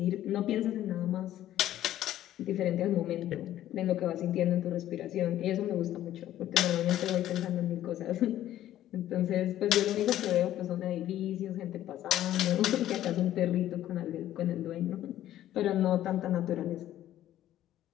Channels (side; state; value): right; quieter; 12.8 dB